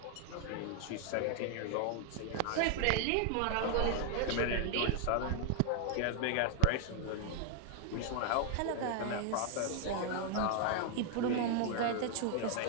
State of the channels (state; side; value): different; both; correlation 0.00